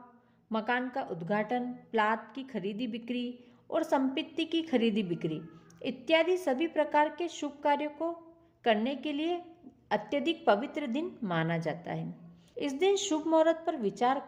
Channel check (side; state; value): both; identical; correlation 1.00